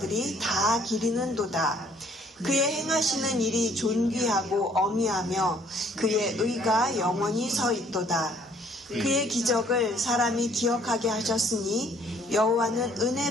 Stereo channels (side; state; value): both; normal; correlation 0.61